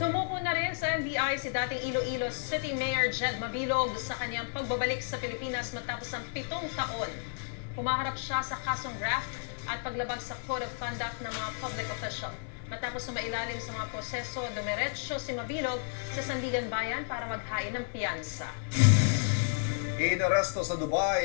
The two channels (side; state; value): right; silent; digital silence